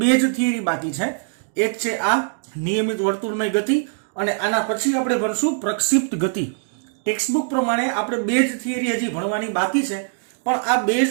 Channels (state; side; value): silent; left; digital silence